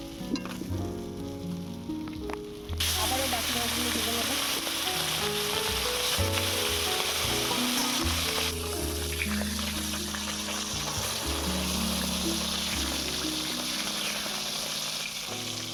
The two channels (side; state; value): both; identical; correlation 1.00